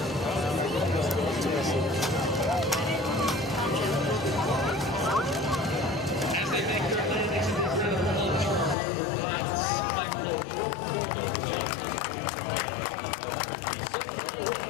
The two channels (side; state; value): right; drops out; at 8.8 s